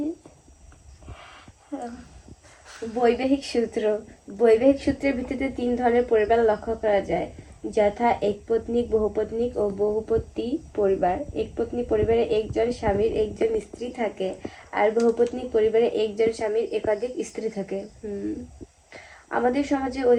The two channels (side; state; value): both; identical; correlation 1.00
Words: বৈবাহিক সূত্র। বৈবাহিক সূত্রের ভিত্তিতে 3 ধরনের পরিবার লক্ষ্য করা যায়, যথা একপত্নিক, বহুপত্নিক ও বহুপতি পরিবার। একপত্নী পরিবারে একজন স্বামীর একজন স্ত্রী থাকে, আর বহুপত্নিক পরিবারে একজন স্বামীর একাধিক স্ত্রী থাকে। আমাদের সমাজে